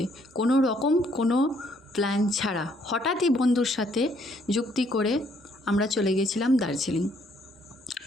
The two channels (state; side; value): normal; both; correlation 0.67